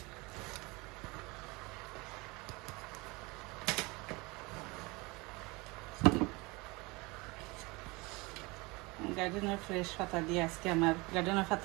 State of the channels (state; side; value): quieter; left; 24.9 dB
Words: গার্ডেনের ফ্রেশ পাতা দিয়ে আজকে আমার গার্ডেনের